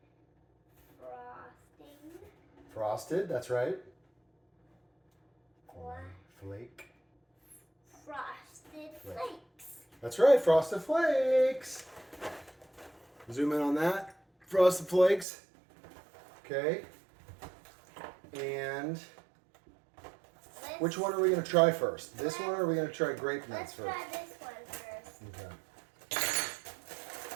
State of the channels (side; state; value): left; drops out; at 15.2 s